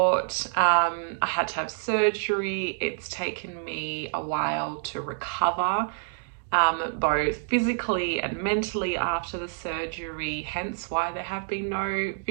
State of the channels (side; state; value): left; silent; digital silence